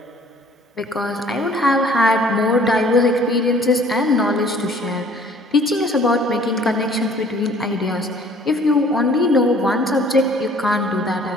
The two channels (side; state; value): both; normal; correlation 0.55